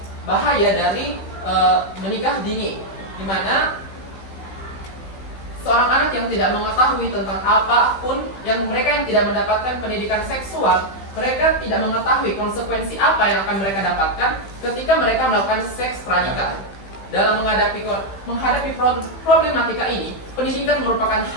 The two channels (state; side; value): late; right; 15 ms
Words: bahaya dari menikah dini, di mana seorang anak yang tidak mengetahui tentang apapun, mereka yang tidak mendapatkan pendidikan seksual, mereka tidak mengetahui konsekuensi apa yang akan mereka dapatkan ketika mereka melakukan seks pranikah. dalam menghadapi problematika ini, pendidikan merupakan